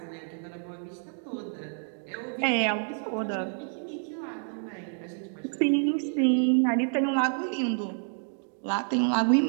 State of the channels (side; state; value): left; silent; 59 dB below the other